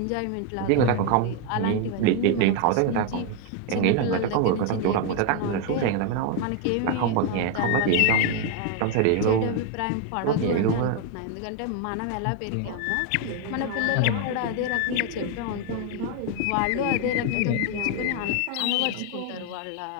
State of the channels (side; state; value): both; different; correlation 0.01